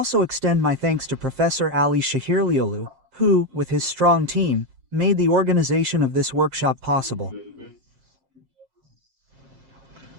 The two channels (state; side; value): late; left; 7.6 ms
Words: extend my thanks to Professor Ali Shahirliolu, who, with his strong team, made the organization of this workshop possible.